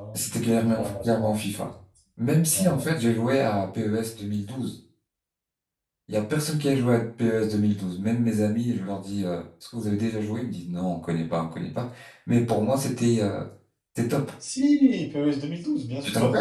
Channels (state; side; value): identical; both; correlation 1.00